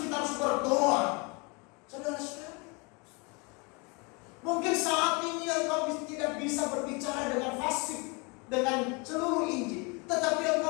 kita harus berdoa. Saudara-saudara, mungkin saat ini engkau tidak bisa berbicara dengan fasih, dengan seluruh Injil, tetapi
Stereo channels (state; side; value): quieter; right; 30.0 dB